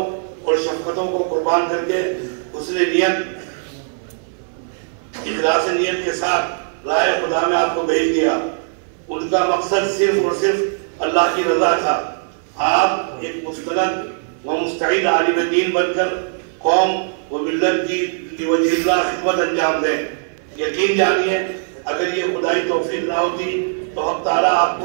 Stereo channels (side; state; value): left; silent; 59 dB below the other